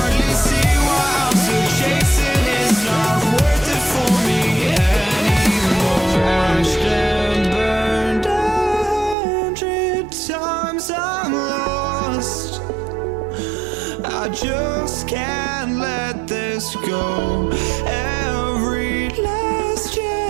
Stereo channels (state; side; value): drops out; left; at 9.2 s